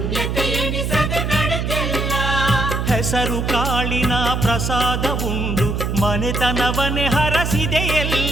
ಎಣಿಸದೆ ನಡೆದೆಲ್ಲ. ಹೆಸರು ಕಾಳಿನ ಪ್ರಸಾದ ಉಂಡು ಮನೆತನವನೇ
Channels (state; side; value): noise; right; hum, 1 dB below the sound